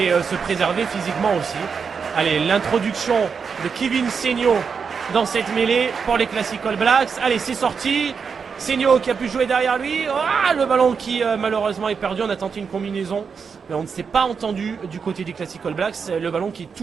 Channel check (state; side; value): quieter; left; 5.9 dB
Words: se préserver physiquement aussi. Allez, l'introduction de Kevin Seigno dans cette mêlée pour les Classic All Blacks. Allez, c'est sorti. Seigno qui a pu jouer derrière lui. Le ballon qui malheureusement est perdu. On a tenté une combinaison, mais on ne s'est pas entendu du côté des Classic All Blacks. Le ballon qui est